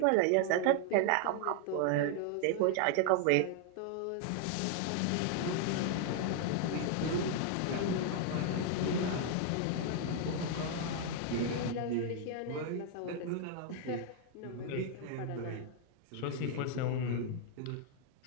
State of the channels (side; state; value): both; different; correlation 0.00